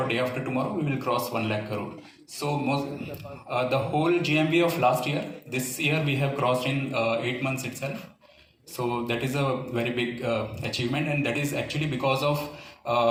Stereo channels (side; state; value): both; identical; correlation 1.00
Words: day after tomorrow, we will cross 1 lakh crore. So the whole GMV of last year, this year we have crossed in 8 months itself. So that is a very big achievement, and that is actually because of